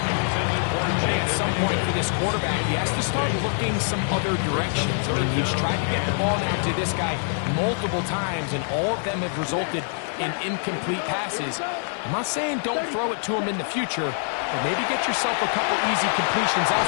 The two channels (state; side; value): silent; right; 61 dB below the other